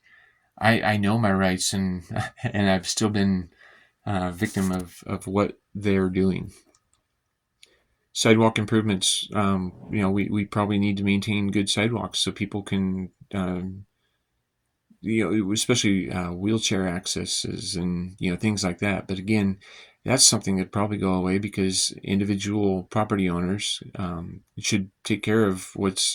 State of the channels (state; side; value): identical; both; correlation 1.00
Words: I know my rights, and and I've still been victim of what they're doing. Sidewalk improvements. We probably need to maintain good sidewalks so people can, especially wheelchair accesses and things like that. But again, that's something that probably go away because individual property owners should take care of